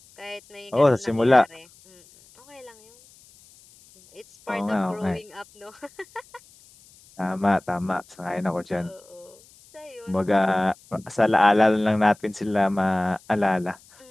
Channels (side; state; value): left; noise; hiss, 27 dB below the sound